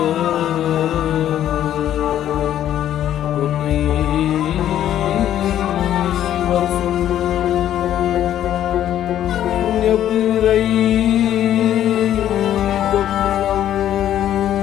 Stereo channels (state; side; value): quieter; right; 11.4 dB